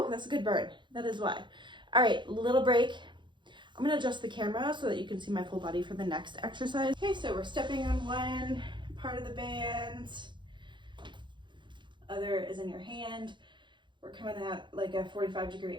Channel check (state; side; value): late; left; 0.23 ms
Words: that's a good burn. That is why. All right, little break. I'm gonna adjust the camera so that you can see my full body for the next exercise. Okay, so we're stepping on one part of the band. Other is in your hand. We're coming at like a 45-degree